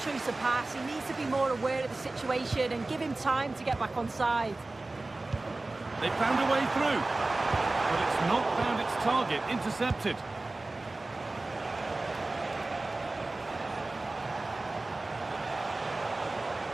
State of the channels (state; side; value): quieter; left; 3.1 dB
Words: of pass. He needs to be more aware of the situation and give him time to get back on side. They found a way through, but it's not found its target. Intercepted.